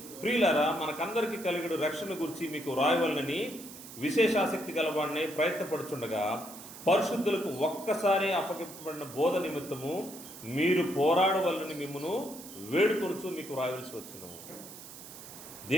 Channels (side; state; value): right; noise; hiss, 15 dB below the sound